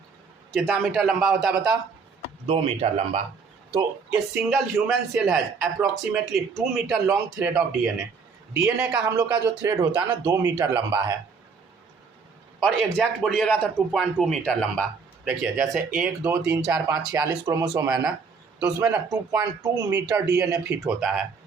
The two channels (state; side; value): quieter; left; 5.3 dB